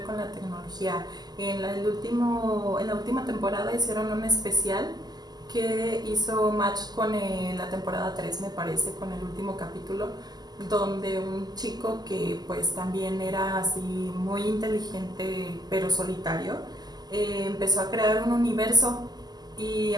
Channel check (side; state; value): left; late; 0.20 ms